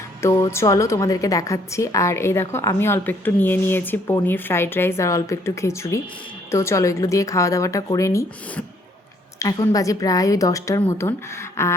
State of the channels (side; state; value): both; normal; correlation 0.65